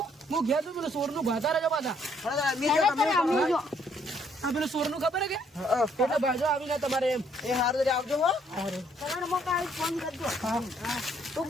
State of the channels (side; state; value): both; normal; correlation 0.67